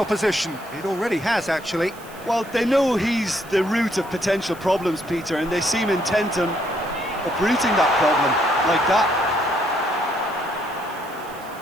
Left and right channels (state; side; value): noise; right; hiss, 22 dB below the sound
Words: It already has, actually. Well, they know he's the root of potential problems, Peter, and they seem intent on uprooting that problem like that.